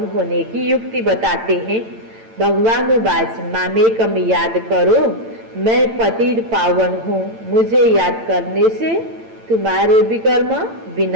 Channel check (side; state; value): left; late; 8.9 ms